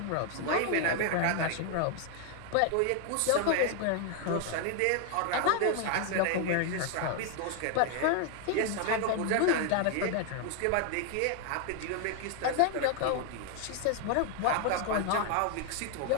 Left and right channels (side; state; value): both; different; correlation 0.00